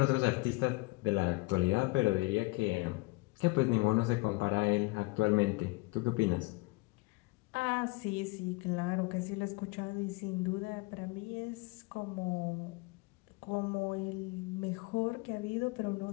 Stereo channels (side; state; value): right; quieter; 24.2 dB